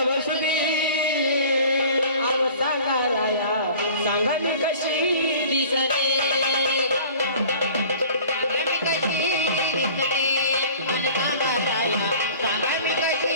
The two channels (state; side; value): inverted; both; correlation -0.46